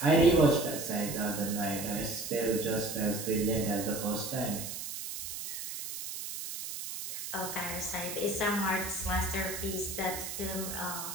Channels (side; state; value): right; noise; hiss, 7 dB below the sound